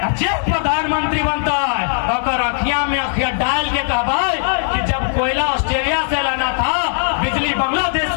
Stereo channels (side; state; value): right; silent; digital silence